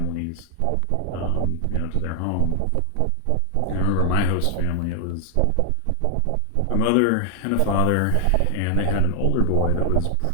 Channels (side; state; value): both; different; correlation 0.00